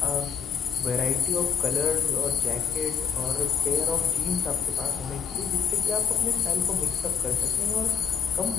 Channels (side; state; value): right; quieter; 7.2 dB